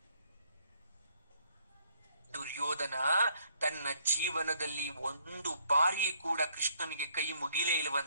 ದುರ್ಯೋಧನ ತನ್ನ ಜೀವನದಲ್ಲಿ ಒಂದು ಬಾರಿ ಕೂಡ ಕೃಷ್ಣನಿಗೆ ಕೈ ಮುಗಿಲೇ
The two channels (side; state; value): both; inverted; correlation -0.67